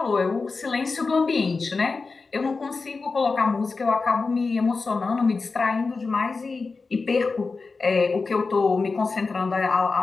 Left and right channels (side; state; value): right; quieter; 4.2 dB